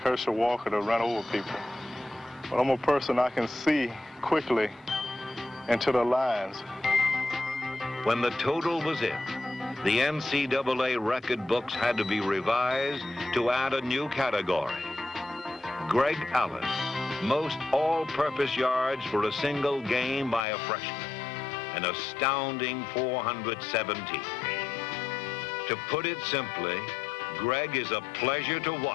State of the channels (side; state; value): right; drops out; at 20.5 s